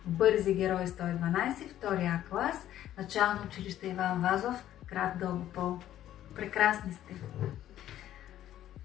Бързи герои 112, втори А клас, начално училище Иван Вазов, град Дългопол. Прекрасни сте!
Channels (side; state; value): right; quieter; 12.3 dB